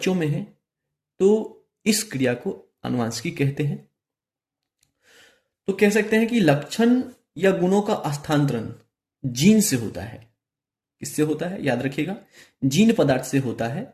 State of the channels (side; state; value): both; identical; correlation 1.00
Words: में है तो इस क्रिया को आनुवंशिकी कहते हैं। तो कह सकते हैं कि लक्षण या गुणों का हस्तांतरण जीन से होता है। किससे होता है? याद रखिएगा, जीन पदार्थ से होता है